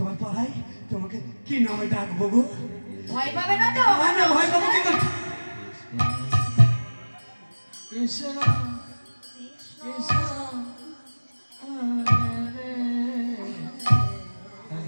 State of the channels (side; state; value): both; inverted; correlation -1.00